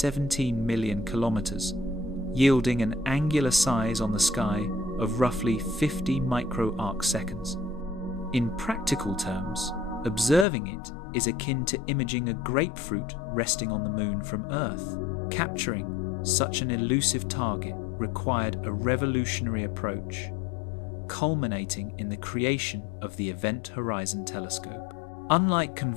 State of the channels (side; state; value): right; drops out; at 10.5 s